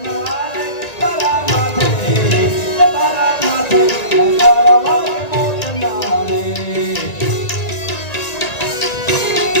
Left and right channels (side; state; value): right; late; 1.9 ms